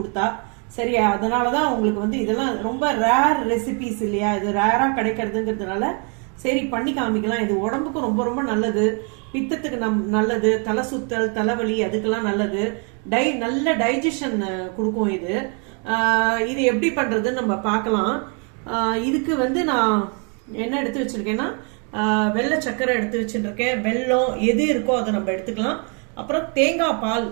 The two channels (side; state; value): left; quieter; 37.7 dB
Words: சரி, அதனாலதான் உங்களுக்கு இதெல்லாம் ரொம்ப ரேர் ரெசிபிஸ் இல்லையா, இது ரேரா கிடைக்கிறதுங்கிறதுனால சரி பண்ணி காமிக்கலாம். இது உடம்புக்கு ரொம்ப ரொம்ப நல்லது. பித்தத்துக்கு நல்லது, தலை சுத்தல், தலைவலி அதுக்கெல்லாம் நல்லது. நல்ல டைஜஷன் கொடுக்கும் இது. இது எப்படி பண்றதுன்னு நம்ம பார்க்கலாம். இதுக்கு நான் என்ன எடுத்து வச்சிருக்கேன்னா, வெள்ளை சக்கரை எடுத்து வச்சுருக்கேன். வெல்லம் எது இருக்கோ அதை நம்ம எடுத்துக்கலாம். அப்புறம் தேங்காய் பால்